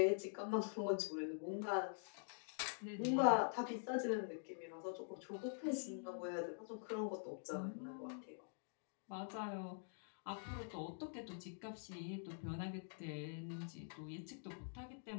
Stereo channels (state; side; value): silent; right; digital silence